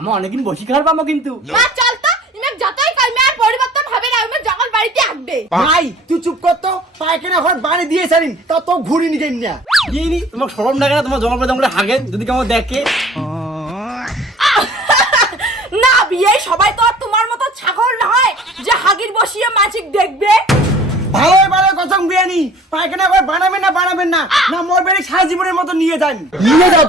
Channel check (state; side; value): normal; both; correlation 0.49